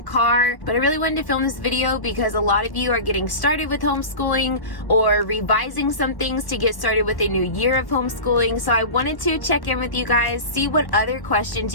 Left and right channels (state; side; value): late; right; 1.2 ms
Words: car, but I really wanted to film this video because a lot of you are getting started with homeschooling or revising some things to get started with a new year of homeschooling. So I wanted to check in with you guys, see what other questions